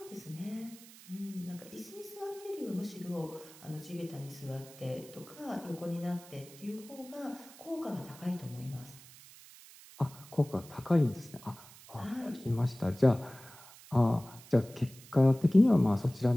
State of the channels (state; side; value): noise; right; hiss, 20 dB below the sound